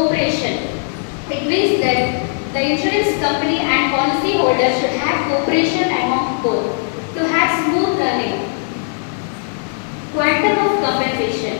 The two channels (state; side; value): silent; right; digital silence